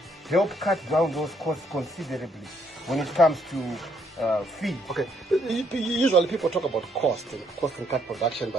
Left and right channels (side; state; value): both; normal; correlation 0.71